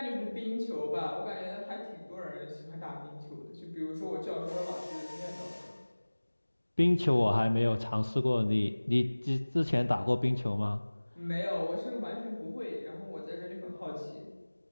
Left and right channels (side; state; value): both; inverted; correlation -1.00